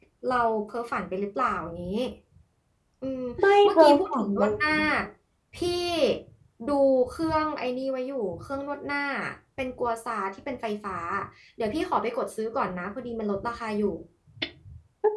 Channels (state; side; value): identical; both; correlation 1.00